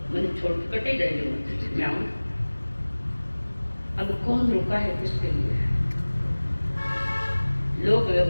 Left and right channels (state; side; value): inverted; both; correlation -1.00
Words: मैंने छोड़ के कटे गए जो मैं आऊँ, अब कौन रुका है किसके लिए। लोग